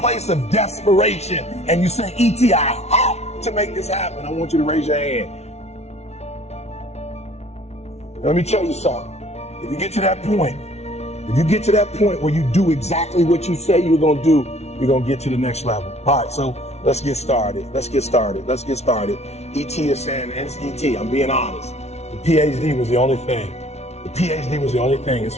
of desperation and you say, E.T., I have to make this happen. I want you to raise your hand. Let me tell you something. If you get to that point, where you do exactly what you say you're gonna do, you're gonna get to the next level. All right, so let's get started. ET is saying, ET, I'm being honest. The PhD was the only thing. And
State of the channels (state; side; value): late; right; 0.31 ms